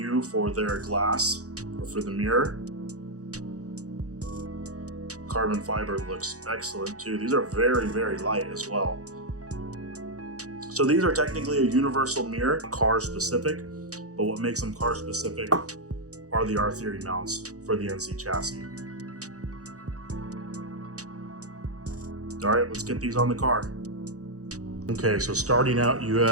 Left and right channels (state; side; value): late; left; 0.66 ms